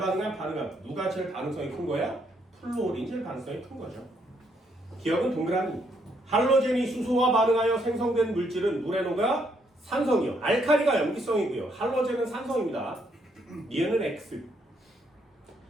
반응함. 누가 제일 반응성이 큰 거야? 플로린이 제일 반응성이 큰 거죠. 기억은 동그라미. 할로젠이 수소와 반응하여 생성된 물질은 물에 녹아 산성이요. 알칼리가 염기성이고요. 할로젠은 산성입니다. 니은은 X.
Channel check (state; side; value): normal; both; correlation 0.72